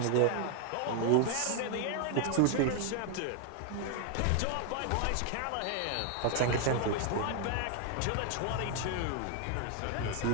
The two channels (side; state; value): both; different; correlation 0.00